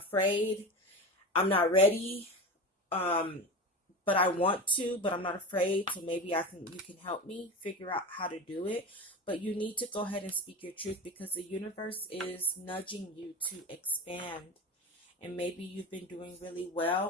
I'm not ready, but I want to, but I'm not afraid, so maybe you can help me figure out how to do it. But you need to go ahead and speak your truth, because the universe is nudging you to expand. And maybe you've been doing really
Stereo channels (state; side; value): normal; both; correlation 0.27